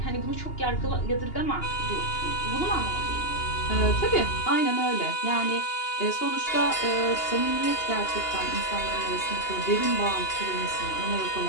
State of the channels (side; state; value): right; late; 2.8 ms